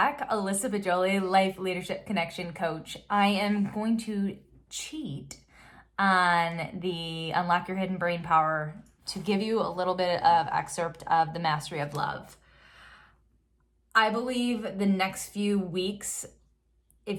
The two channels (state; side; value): identical; both; correlation 1.00